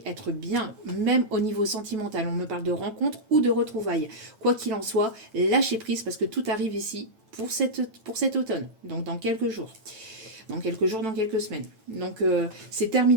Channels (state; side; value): late; left; 9.0 ms